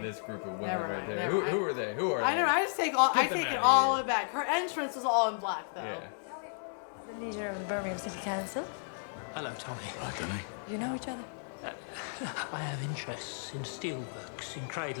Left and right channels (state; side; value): silent; right; digital silence